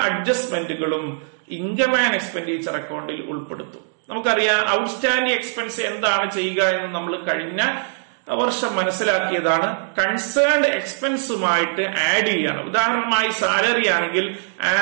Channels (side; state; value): left; silent; digital silence